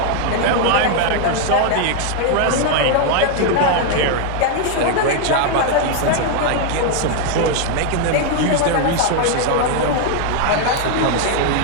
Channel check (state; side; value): different; both; correlation 0.00